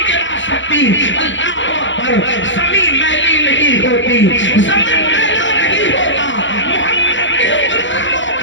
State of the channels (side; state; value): right; late; 0.54 ms